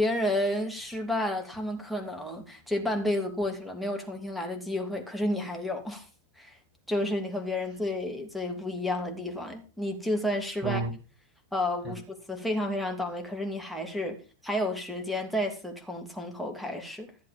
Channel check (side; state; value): both; normal; correlation 0.64